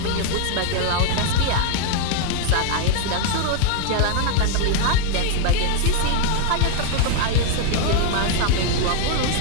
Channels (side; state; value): both; different; correlation 0.00